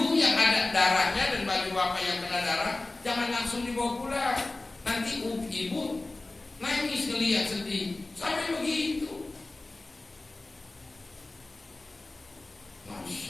yang ada darahnya dan baju bapak yang kena darah, jangan langsung dibawa pulang. Nanti ibu nangis ngelihat sedih, sampai begitu.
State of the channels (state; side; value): quieter; right; 3.0 dB